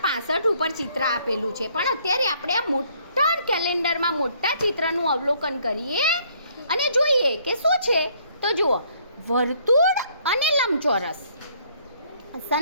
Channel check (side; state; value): both; inverted; correlation -0.64